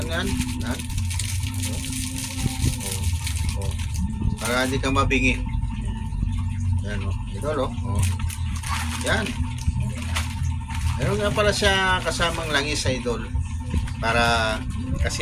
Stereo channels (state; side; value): identical; both; correlation 1.00